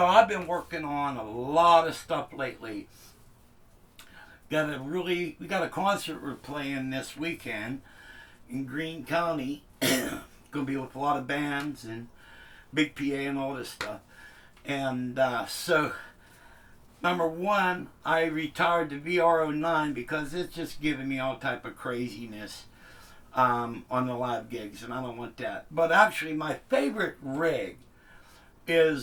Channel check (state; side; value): identical; both; correlation 1.00